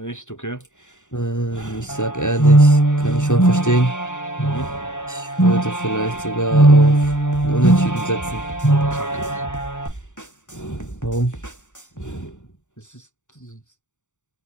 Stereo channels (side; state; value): right; late; 0.85 ms